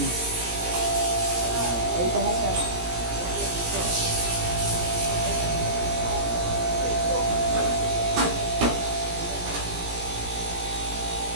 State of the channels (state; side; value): late; left; 17 ms